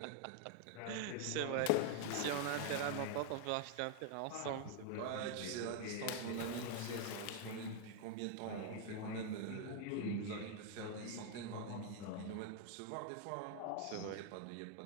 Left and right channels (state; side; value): different; both; correlation 0.00